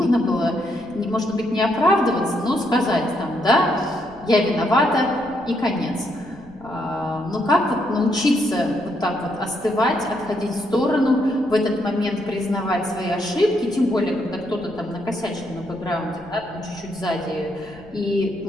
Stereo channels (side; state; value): left; noise; rumble, 23 dB below the sound